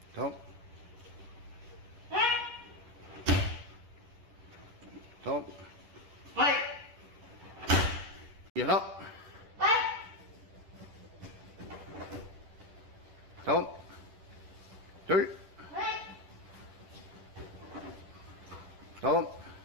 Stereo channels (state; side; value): late; left; 10 ms